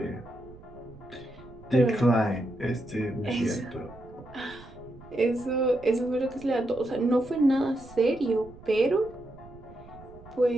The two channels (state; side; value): noise; right; rumble, 20 dB below the sound